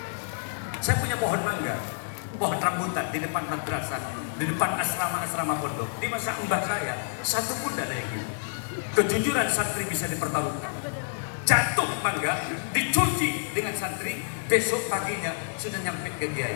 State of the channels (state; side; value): silent; right; digital silence